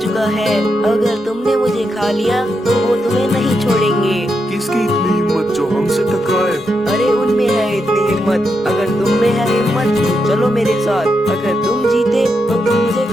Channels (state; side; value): normal; both; correlation 0.83